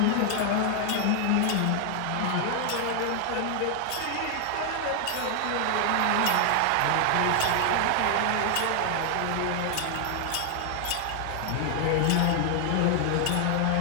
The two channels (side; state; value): both; different; correlation 0.00